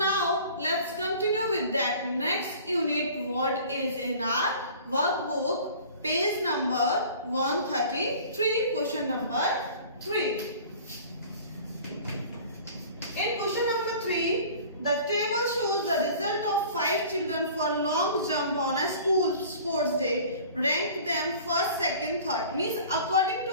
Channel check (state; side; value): inverted; both; correlation -0.45